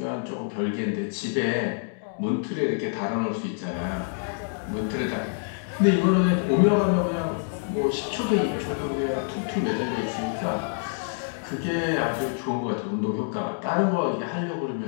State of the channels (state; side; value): silent; right; 61 dB below the other